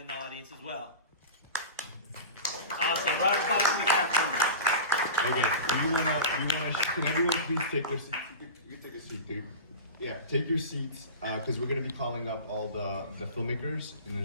the audience as well? Awesome, round of applause for the cast members. Okay, can everyone please take their seats? You can take a seat, dude. Yeah, take your seats, because we're going to be calling up all the filmmakers in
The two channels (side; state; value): both; inverted; correlation -0.30